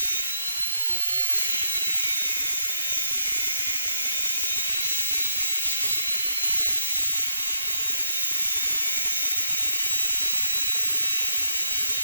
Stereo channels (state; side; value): inverted; both; correlation -0.77